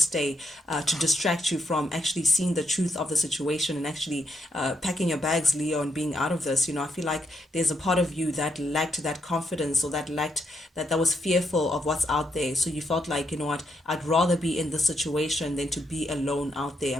to distract you from actually seeing the truth of the situation and actually packing your bags, Leo, and being out of this. You know, I feel like there's a part of you that lacked that confidence, or that lacked that was fearful of what's out there. So you felt like, you know what, I'd rather be in this situation than to be alone out there.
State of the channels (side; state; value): both; normal; correlation 0.78